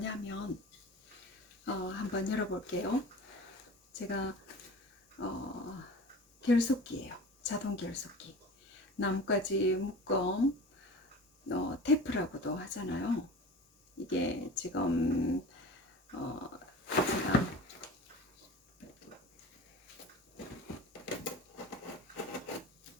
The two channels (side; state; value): both; normal; correlation 0.37